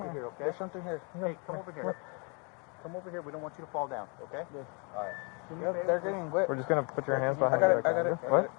here, okay? There's something here. Hey, come over here. Come over here. We don't want you to fall down, okay? Yeah. All right. Yep, they're getting wet. We're just gonna put your hands behind I your got it. What?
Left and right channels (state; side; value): quieter; right; 34.4 dB